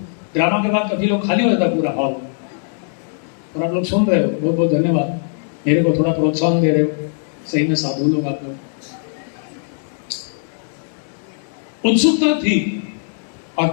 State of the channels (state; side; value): silent; right; digital silence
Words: ड्रामा के बाद कभी लोग खाली हो जाता पूरा हॉल, और आप लोग सुन रहे हो, बहुत बहुत धन्यवाद। मेरे को थोड़ा प्रोत्साहन दे रहे हो, सही में साधु लोग आप लोग। उत्सुकता थी, और